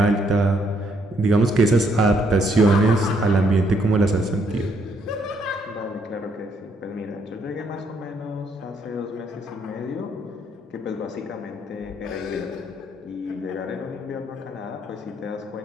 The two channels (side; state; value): both; normal; correlation 0.71